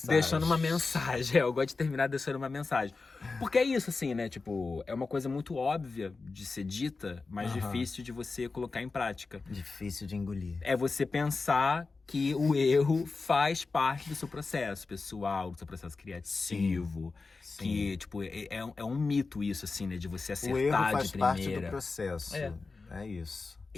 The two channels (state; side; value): quieter; right; 4.1 dB